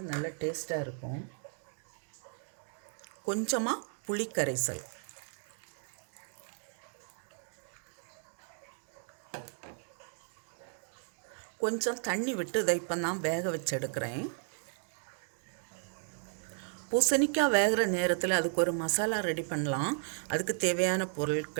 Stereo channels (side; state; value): left; silent; 55 dB below the other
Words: நல்ல டேஸ்ட்டாக இருக்கும். கொஞ்சமாக புளி கரைசல், கொஞ்சம் தண்ணி விட்டு இதை இப்போ நான் வேக வச்சு எடுக்கிறேன். பூசணிக்காய் வேகிற நேரத்தில் அதுக்கு ஒரு மசாலா ரெடி பண்ணலாம். அதுக்கு தேவையான